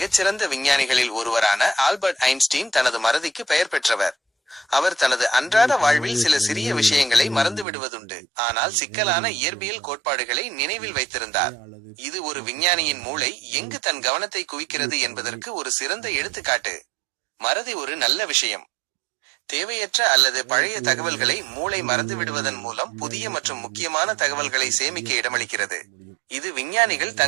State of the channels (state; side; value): drops out; left; at 7.7 s